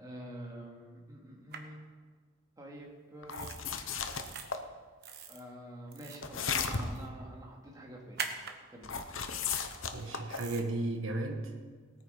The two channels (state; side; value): normal; both; correlation 0.28